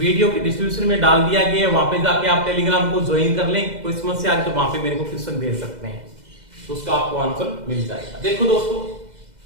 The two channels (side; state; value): left; late; 2.0 ms